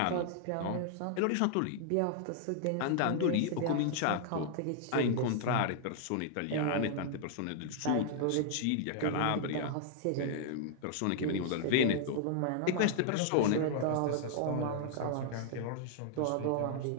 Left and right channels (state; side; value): different; both; correlation 0.00